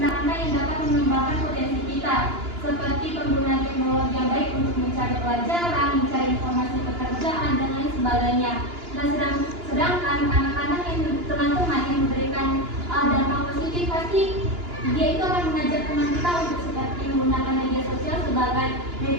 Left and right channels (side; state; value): left; late; 2.9 ms